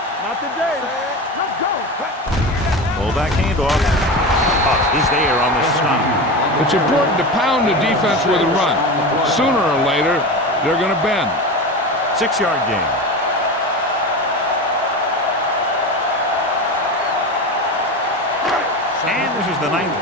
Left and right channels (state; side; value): normal; both; correlation 0.25